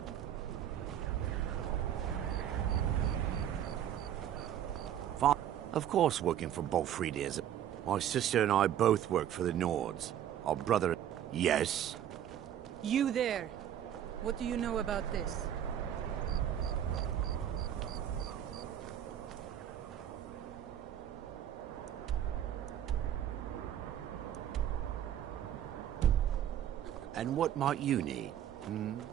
Of course, working for Bolfried is. My sister and I both work for the Nords. Our brother... Yes? You there. What do you know about this? And what might you need?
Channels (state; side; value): quieter; left; 10.5 dB